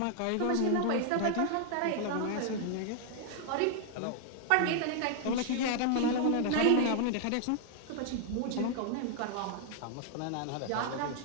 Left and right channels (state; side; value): different; both; correlation 0.00